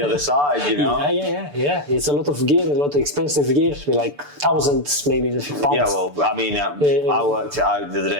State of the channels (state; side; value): late; left; 6.9 ms